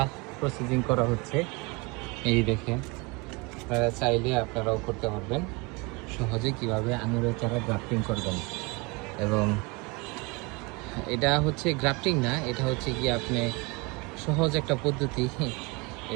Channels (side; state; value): left; quieter; 27.4 dB